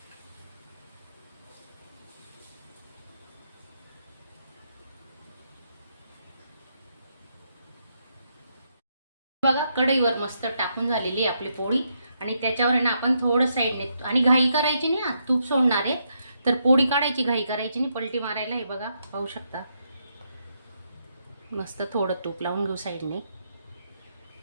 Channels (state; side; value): inverted; both; correlation -0.79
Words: बघा कढईवर मस्त टाकून झालेली आपली पोळी. आणि त्याच्यावर आहे ना आपण थोडं साईडने, आणि घाई करायची नाही, तूप सोडणार आहे तर पोळी काढायची, घाई करायची नाही, पलटी मारायला. हे बघा पाहू शकता. मस्त थोडं तूप लावून घेऊ साईडने.